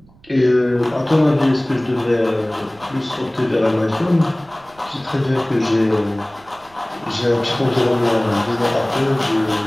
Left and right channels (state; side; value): noise; right; rumble, 29 dB below the sound